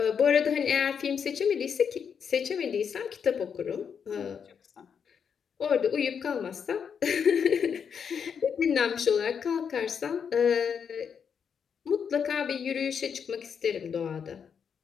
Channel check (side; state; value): right; quieter; 7.0 dB